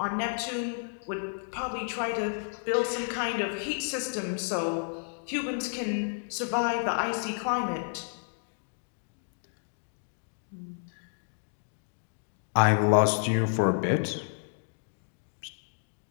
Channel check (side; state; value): right; silent; digital silence